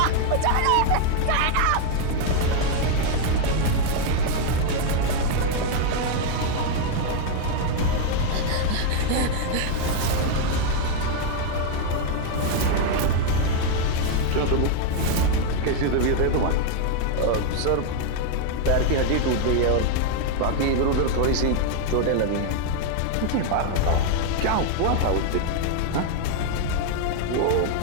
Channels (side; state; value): both; different; correlation 0.00